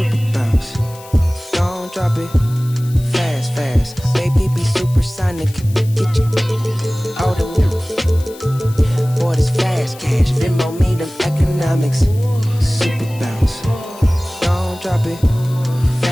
bounce, don't drop it. Fast, fast, baby, be supersonic. Get you all the boy, this fast cash. Venmo me them economics. Super bounce, don't drop it.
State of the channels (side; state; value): left; noise; hiss, 20 dB below the sound